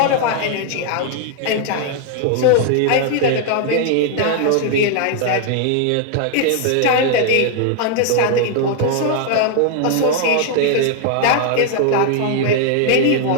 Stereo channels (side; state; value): both; different; correlation 0.00